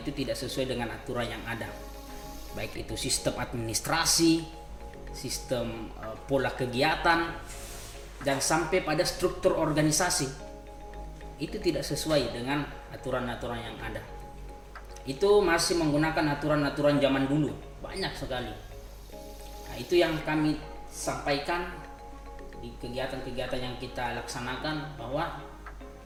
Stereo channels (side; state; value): both; identical; correlation 1.00